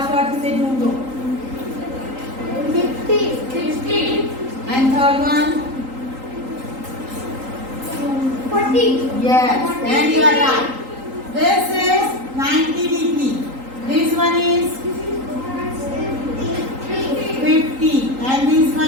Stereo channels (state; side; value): late; left; 3.8 ms